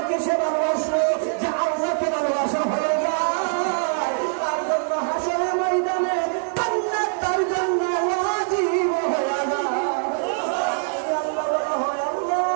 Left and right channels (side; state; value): left; silent; 63 dB below the other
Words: সে ভালোবাসলো যে আল্লাহকে ভালোবাসা হয়ে যায়। তার জন্য হাসরের ময়দানে জান্নাত তার জন্য ওয়াজিব হয়ে যায়।